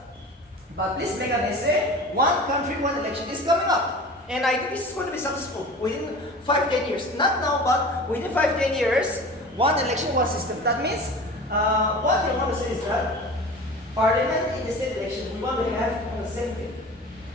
But please make an essay, one country, one election is coming up. And I think this is going to be successful within 5-10 years. Not now, but within 5-10 years, one election, one system. That means, what you want to say is that Parliament in the state election, we want to have on the same day.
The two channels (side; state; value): both; normal; correlation 0.37